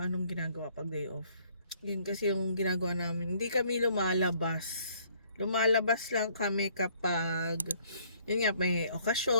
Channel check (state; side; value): inverted; both; correlation -0.62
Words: ginagawa pag day off. Yun kasi yung ginagawa namin. Hindi kami lumalabas. Lumalabas lang kami kapag yun nga, may